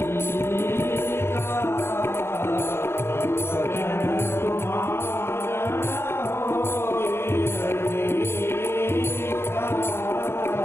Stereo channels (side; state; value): right; late; 0.12 ms